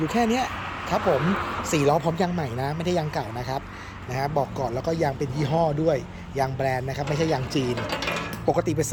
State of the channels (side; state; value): both; identical; correlation 1.00